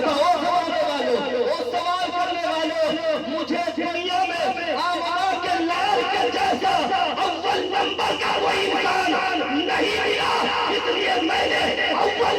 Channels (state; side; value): identical; both; correlation 1.00